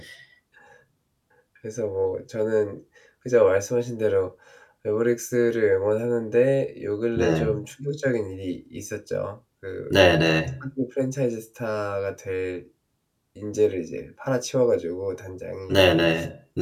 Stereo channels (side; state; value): both; identical; correlation 1.00